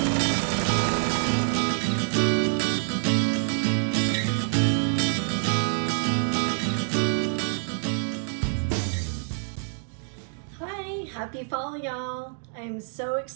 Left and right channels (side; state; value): left; silent; 61 dB below the other